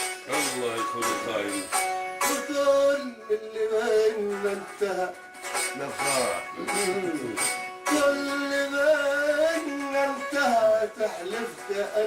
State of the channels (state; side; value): identical; both; correlation 1.00